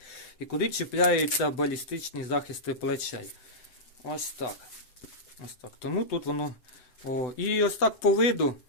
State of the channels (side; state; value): right; late; 7.9 ms